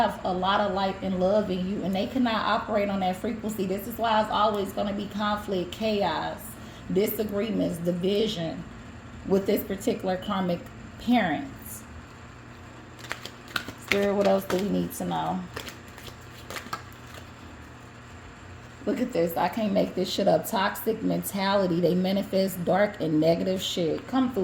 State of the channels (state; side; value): identical; both; correlation 1.00